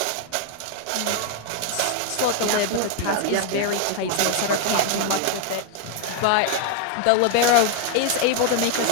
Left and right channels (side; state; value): both; different; correlation 0.00